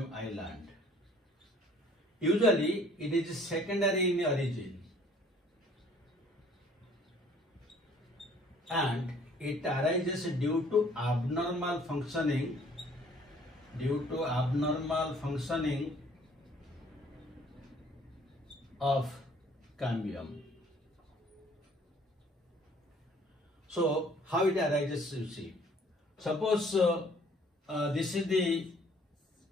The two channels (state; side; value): normal; both; correlation 0.57